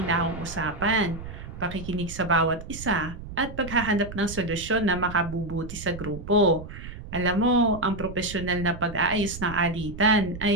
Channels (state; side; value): noise; right; rumble, 11 dB below the sound